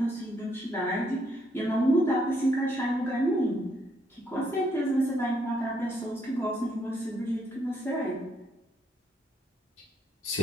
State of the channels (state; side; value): normal; both; correlation 0.72